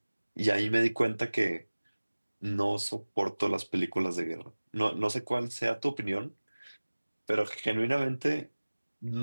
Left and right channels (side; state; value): both; inverted; correlation -1.00